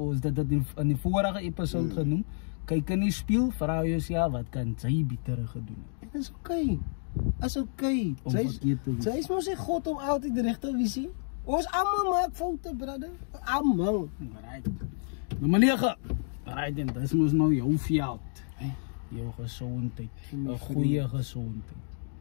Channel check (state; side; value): silent; right; 58 dB below the other